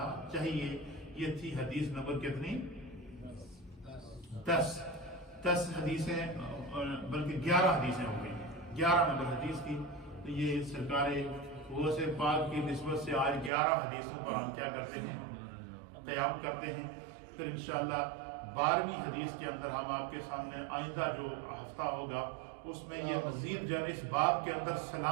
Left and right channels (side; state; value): left; drops out; at 13.5 s